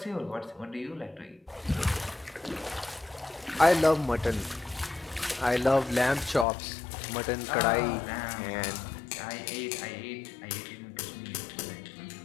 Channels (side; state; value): right; drops out; at 6.5 s